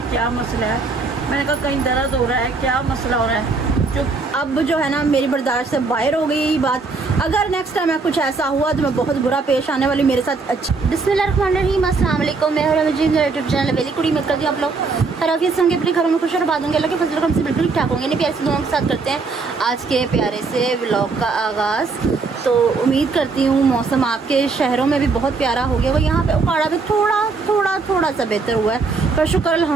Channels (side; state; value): left; quieter; 4.2 dB